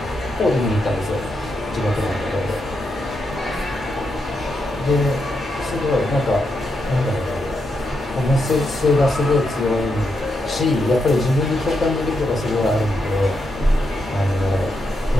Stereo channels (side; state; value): both; normal; correlation 0.83